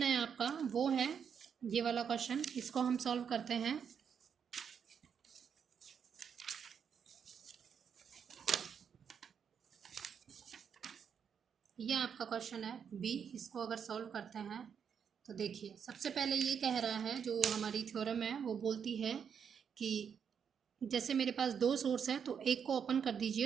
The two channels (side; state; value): left; quieter; 7.3 dB